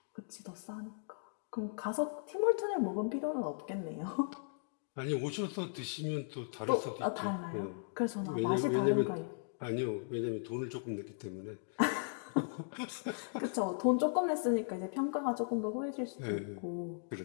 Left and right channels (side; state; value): right; silent; digital silence